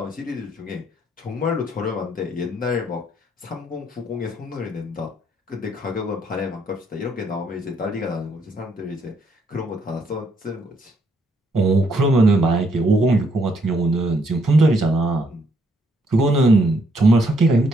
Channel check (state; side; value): normal; both; correlation 0.71